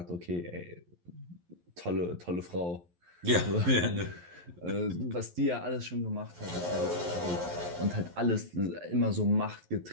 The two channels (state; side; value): late; left; 11 ms